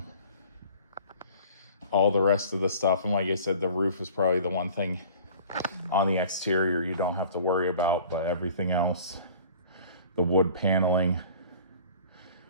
the rest of the stuff, and like I said, the roof is probably the one thing on the exterior you don't have to worry about, but everything else, the wood paneling,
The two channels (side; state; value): both; inverted; correlation -0.47